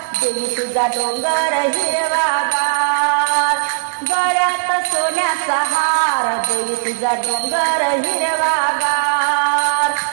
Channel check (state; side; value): silent; left; digital silence